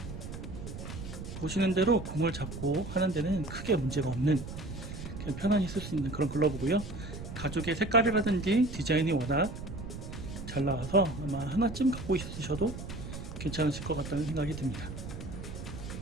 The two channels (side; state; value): right; noise; rumble, 9 dB below the sound